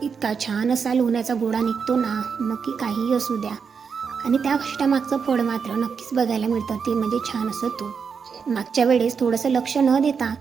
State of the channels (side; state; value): left; quieter; 6.0 dB